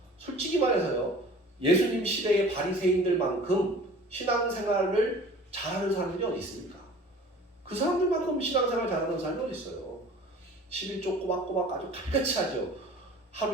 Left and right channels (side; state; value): both; normal; correlation 0.45